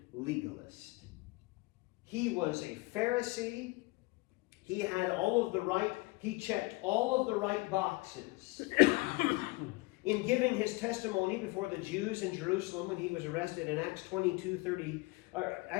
legalist. He was a Pharisee. He had all of the right. He checked all of the right boxes. In giving his testimony before the Jews in Jerusalem when he was arrested in Acts 22:3,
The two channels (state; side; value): quieter; right; 23.8 dB